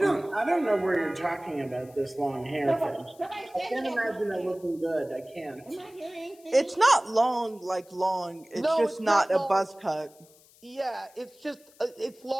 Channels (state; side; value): noise; left; hiss, 27 dB below the sound